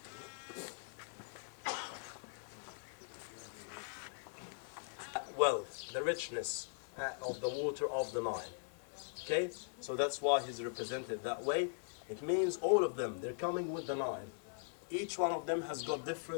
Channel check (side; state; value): right; silent; digital silence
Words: well, the richness of the water of the Nile. Okay, so that's why he's represented that way. It means all of them, they're coming with the Nile. Each one of them has got